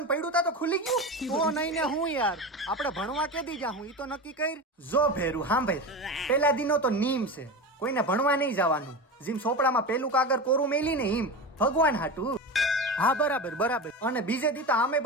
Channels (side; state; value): both; normal; correlation 0.24